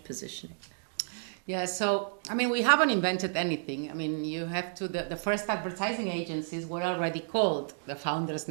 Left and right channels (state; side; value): silent; left; digital silence